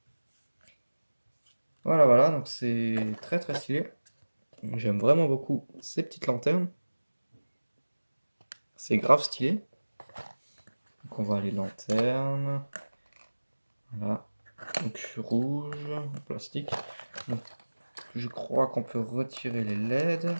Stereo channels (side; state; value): both; inverted; correlation -1.00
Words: Voilà, voilà, donc c'est très très stylé. J'aime vraiment beaucoup ces petites lanternes. C'est grave stylé. Donc on voit les lanternes. Voilà. Donc rouge, en plastique. Donc, je crois qu'on peut retirer les LED.